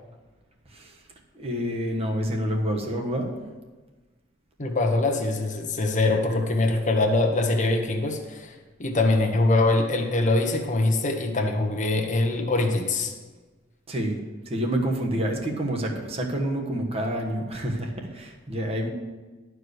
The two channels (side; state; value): both; normal; correlation 0.56